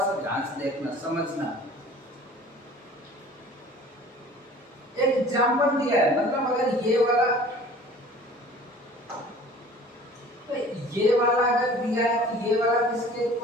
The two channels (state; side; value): normal; both; correlation 0.46